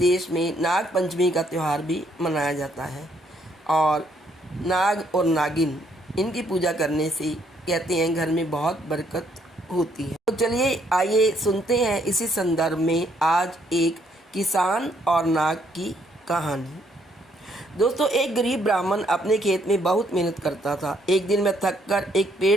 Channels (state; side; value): normal; both; correlation 0.69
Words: में नाग पंचमी का त्यौहार भी मनाया जाता है और नाग और नागिन इनकी पूजा करने से कहते हैं घर में बहुत बरकत होती है। तो चलिए आइए सुनते हैं इसी संदर्भ में आज एक किसान और नाग की कहानी। दोस्तों, एक गरीब ब्राह्मण अपने खेत में बहुत मेहनत करता था। एक दिन मैं थक कर एक